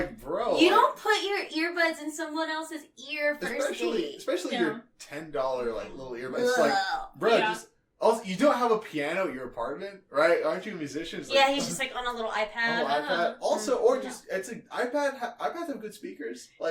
bro, you don't put your earbuds in someone else's ear first date. especially your $10 like little earbuds. It's like, bro, just. Also, you don't have a piano at your apartment, right? Aren't you a musician? It's Yeah, like, he's just like on a little iPad. iPad. Also, or just it's an iPad. iPads have good speakers.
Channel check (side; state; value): both; identical; correlation 1.00